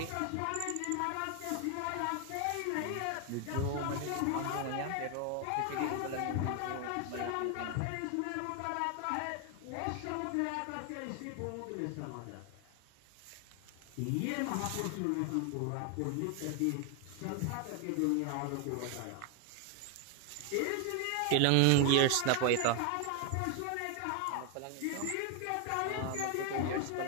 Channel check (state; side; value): different; both; correlation 0.01